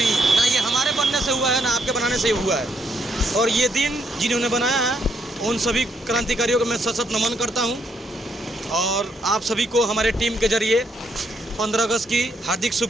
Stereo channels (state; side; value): normal; both; correlation 0.74